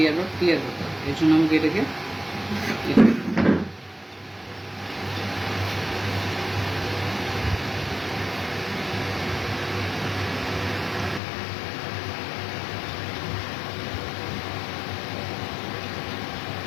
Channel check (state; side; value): drops out; right; at 11.2 s